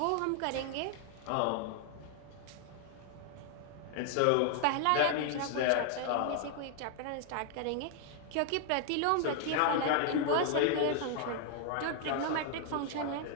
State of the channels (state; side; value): different; both; correlation 0.00